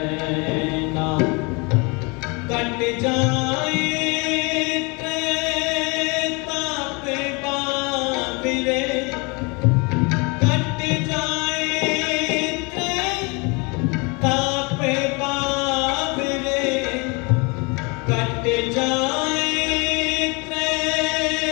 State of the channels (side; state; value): right; quieter; 29.6 dB